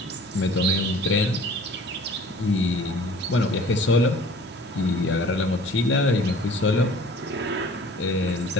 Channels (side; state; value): both; normal; correlation 0.48